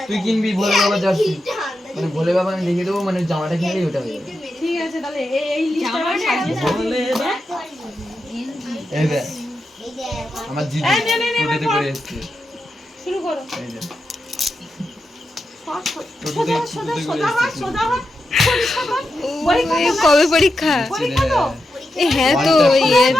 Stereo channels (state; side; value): normal; both; correlation 0.88